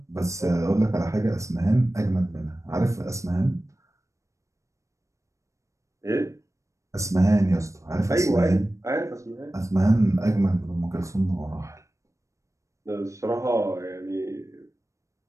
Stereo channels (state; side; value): late; left; 0.15 ms